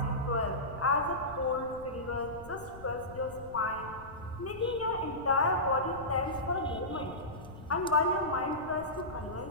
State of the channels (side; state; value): left; noise; rumble, 17 dB below the sound